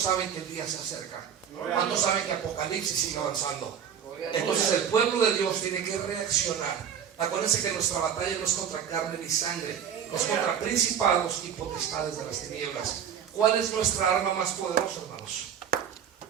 que el día se acerca? ¿Cuántos saben que Apocalipsis sigue avanzando? Entonces el pueblo de Dios tiene que reaccionar. Acuérdense que nuestra batalla no es contra carne ni sangre, es contra principados y potestades de las tinieblas. ¿Cuál es nuestra arma más poderosa, hermanos?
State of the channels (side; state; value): left; quieter; 8.4 dB